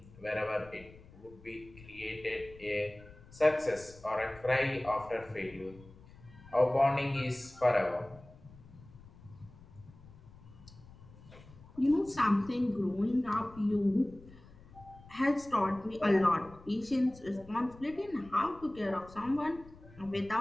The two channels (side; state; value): left; noise; rumble, 21 dB below the sound